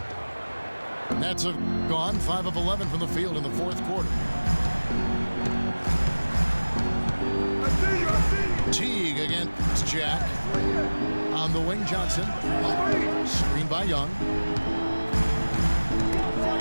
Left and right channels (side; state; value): both; inverted; correlation -1.00